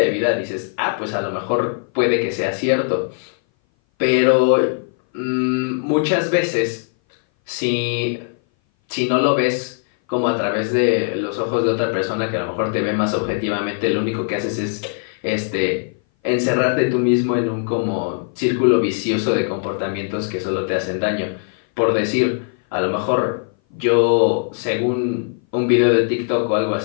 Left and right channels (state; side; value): silent; right; 59 dB below the other